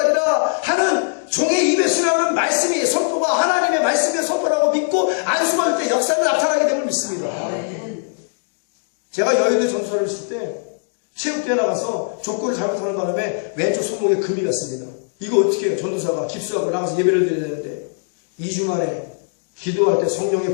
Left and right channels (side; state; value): right; silent; digital silence